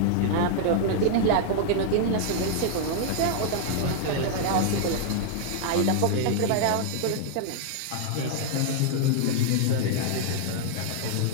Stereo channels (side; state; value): both; different; correlation -0.01